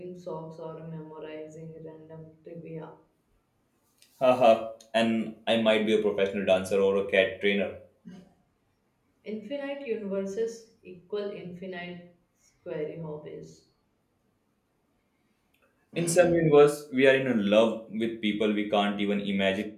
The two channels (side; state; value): both; identical; correlation 1.00